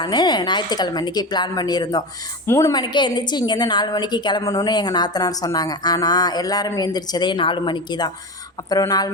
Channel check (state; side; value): normal; both; correlation 0.23